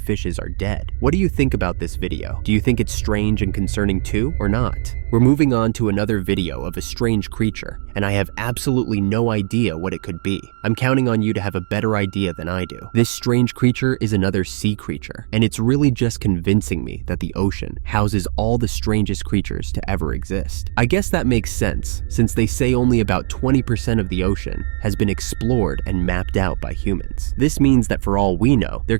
are dead. What do you think about this video? Do you think it's strange and concerning too, or not? We're moving on to another video of a strange creature, and I have absolutely no idea what it could be. I'm counting on you to have a better idea than I do. This strange creature is another sea creature, and it's really just convincing me that the ocean houses all the strangest creatures to ever exist. I guess that makes sense, since they say only about 20% of the ocean has been explored and mapped out by humans. This means that for all we know, there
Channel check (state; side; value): silent; left; digital silence